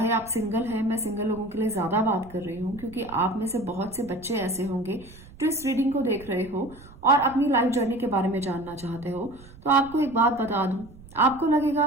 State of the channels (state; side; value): noise; right; rumble, 20 dB below the sound